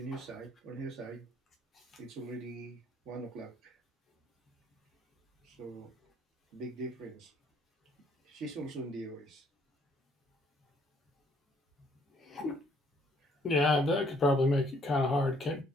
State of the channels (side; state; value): both; normal; correlation 0.65